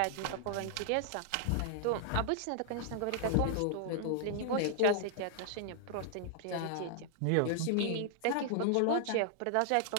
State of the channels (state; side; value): different; both; correlation 0.00